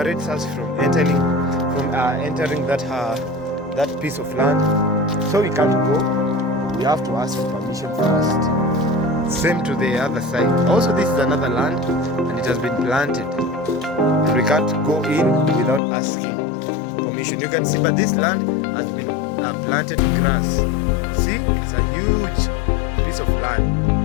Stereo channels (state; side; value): drops out; right; at 15.8 s